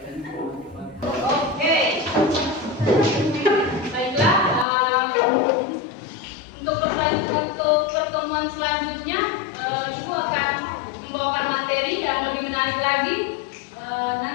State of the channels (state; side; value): drops out; right; at 4.7 s